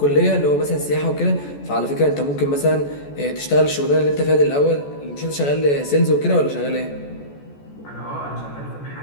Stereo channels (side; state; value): right; late; 14 ms